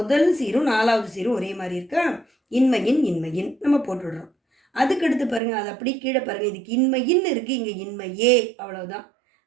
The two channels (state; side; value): drops out; left; at 5.4 s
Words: சீரும் 4வது சீரும் ஒரே மாதிரி இருக்கா? இன்மையின் இன்மையின் நம்ம போட்டுடுறோம். அதுக்கடுத்து பாருங்கள், அது அப்படி கீழே பாருங்கள். இதுக்கு இன்மையின் இருக்குது, இங்கே இன்மையே, அவ்வளவுதான்.